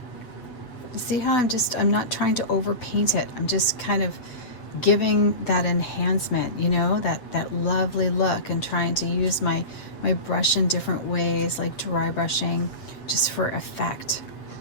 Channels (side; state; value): right; late; 7.9 ms